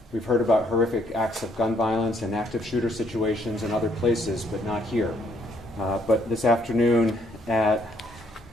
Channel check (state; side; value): normal; both; correlation 0.69